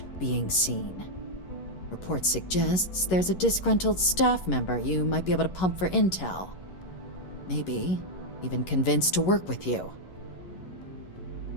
being seen. Report suggests there's a disgruntled staff member you might be able to pump for intel. Maybe even convince to work with you.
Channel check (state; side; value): late; right; 11 ms